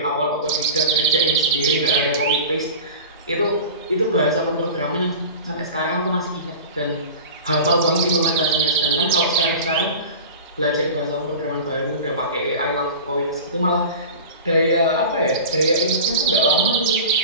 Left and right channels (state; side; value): inverted; both; correlation -0.33